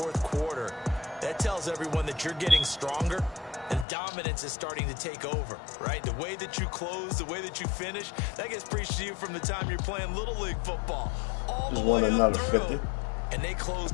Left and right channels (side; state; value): right; drops out; at 3.9 s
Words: quarter, that tells everyone that you're getting stronger and dominance is starting to take over, right? The way that you close, the way that you finish, that gets preached to you from the time you're playing Little League football. Just won another 50. And they